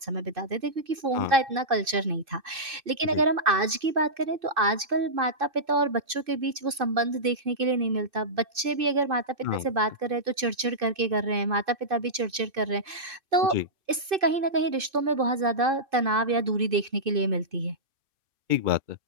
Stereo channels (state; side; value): late; left; 2.6 ms